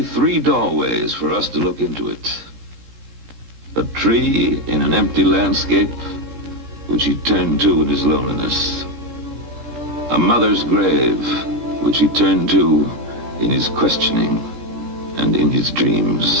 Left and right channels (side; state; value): left; late; 17 ms